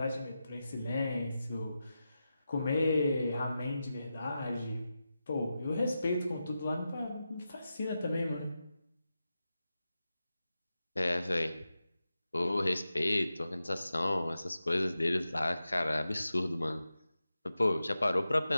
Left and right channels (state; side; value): inverted; both; correlation -0.91